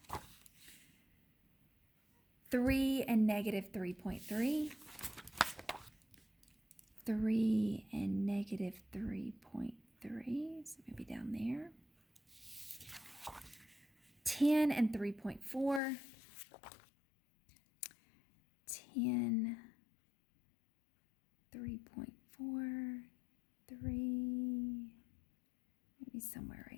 3 and negative 3.3. 3 and negative 3.3, so maybe down there. 10 and 3.4. 10, 3.4, 3, maybe somewhere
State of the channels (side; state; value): right; drops out; at 15.8 s